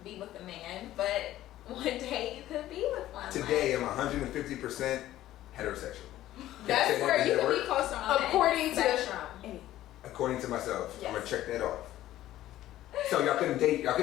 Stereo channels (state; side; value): quieter; right; 14.1 dB